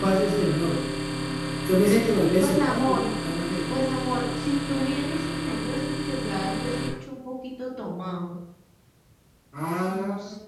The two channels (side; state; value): both; identical; correlation 1.00